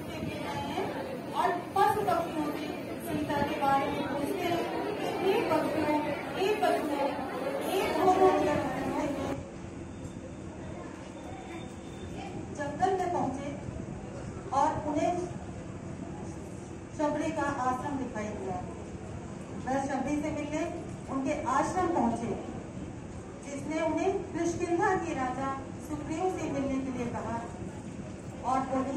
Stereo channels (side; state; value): both; identical; correlation 1.00